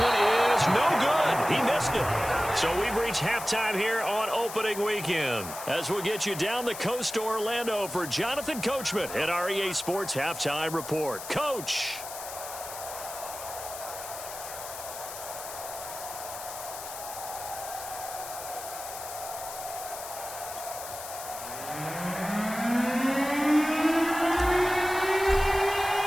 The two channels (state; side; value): noise; left; hiss, 10 dB below the sound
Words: is no good. He missed it. So we've reached halftime here on opening weekend. As we'll get you down the coast to Orlando for Jonathan Coachman at our EA Sports Halftime Report. Coach.